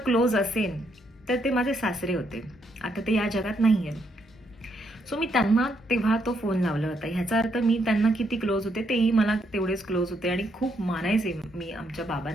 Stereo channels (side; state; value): both; normal; correlation 0.75